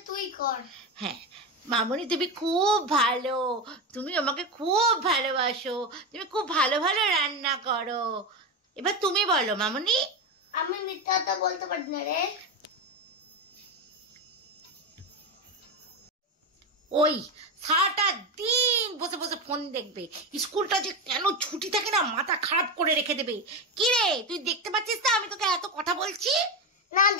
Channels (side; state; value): both; normal; correlation 0.16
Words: তুই কর। হ্যাঁ মামনি তুমি খুব ভালো, তুমি আমাকে খুব ভালোবাসো, তুমি খুব ভালো ভালো রান্না করো। এবার তুমি বলো মামনি। আমি মিথ্যা কথা বলতে পারি না রে। ওই সারাটা দিন বসে বসে ফোন দেখবে, স্কুলটা যে কেন ছুটি থাকে না মাথা খারাপ করে রেখে দেবে। কি রে তুই দেখতে পাচ্ছিস না আমি তোকে এত কথা বলছি? না